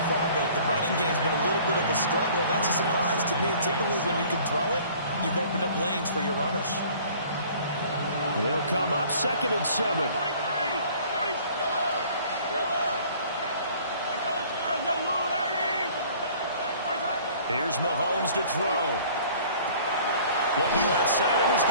far, but the running game's been a little bit of a struggle. That's a surprise to me. Typically, when you can throw it, you've opened up lanes for your runners. And they'll come up 2nd and 7. Here's Mahomes to throw. Looking left side, and he's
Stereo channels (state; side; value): inverted; both; correlation -0.52